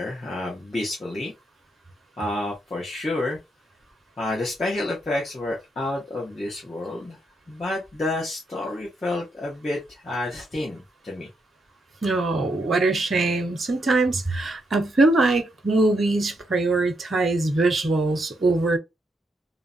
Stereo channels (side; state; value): both; normal; correlation 0.79